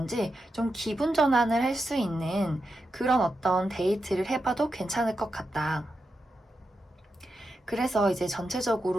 좀 기분 전환을 할 수 있는 그런 어떤 데이트를 해봐도 괜찮을 것 같다. 그래서 이제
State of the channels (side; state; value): both; normal; correlation 0.88